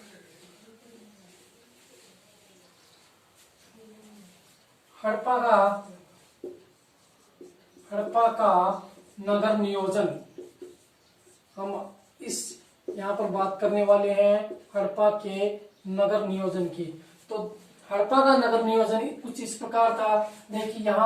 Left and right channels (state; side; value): identical; both; correlation 1.00